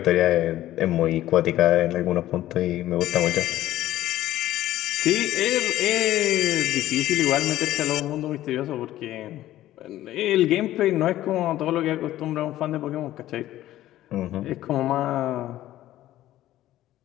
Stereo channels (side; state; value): right; quieter; 14.2 dB